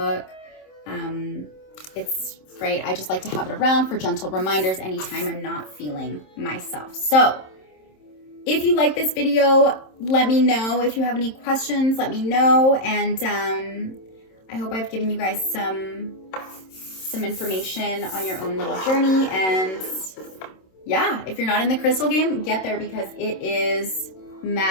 It's great. I just like to have it around for gentle reminders anytime I'm not feeling myself. So if you like this video, let me know. If you have any questions, let me know. And I hope I've given you guys some information on your own little journey. And yeah, if you're not in the crystal game, get there because it is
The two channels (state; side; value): late; right; 26 ms